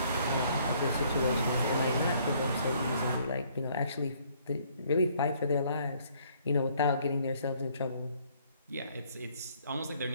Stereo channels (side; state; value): both; inverted; correlation -0.63